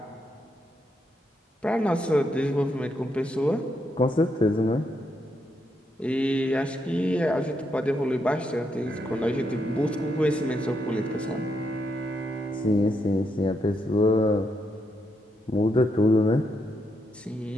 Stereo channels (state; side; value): normal; both; correlation 0.79